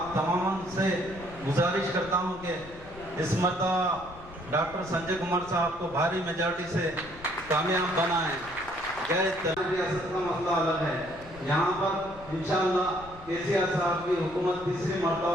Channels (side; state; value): left; noise; rumble, 19 dB below the sound